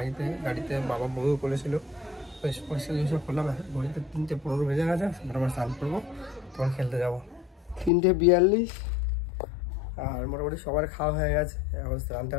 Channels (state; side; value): drops out; right; at 7.9 s